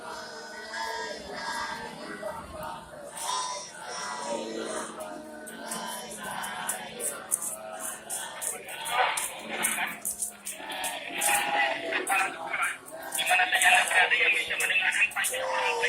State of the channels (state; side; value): identical; both; correlation 1.00